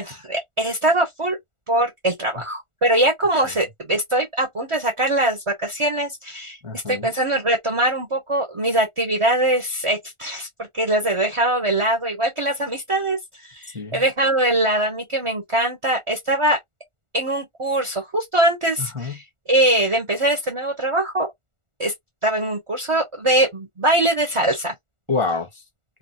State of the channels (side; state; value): left; late; 1.4 ms